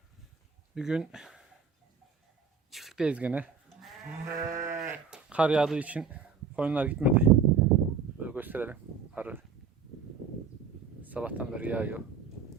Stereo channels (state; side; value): quieter; left; 5.7 dB